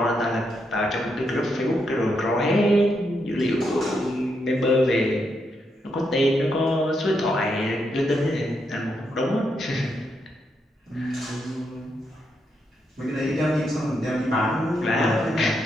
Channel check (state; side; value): normal; both; correlation 0.80